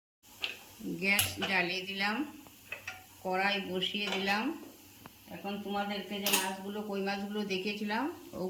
গ্যাস জ্বালিয়ে দিলাম, কড়াই বসিয়ে দিলাম। এখন তোমাদেরকে যে মাছগুলো কই মাছগুলো দেখিয়েছিলাম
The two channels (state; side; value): identical; both; correlation 1.00